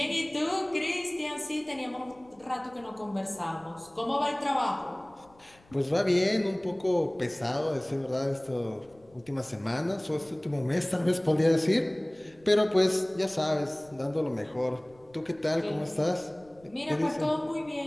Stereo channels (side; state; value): left; noise; rumble, 29 dB below the sound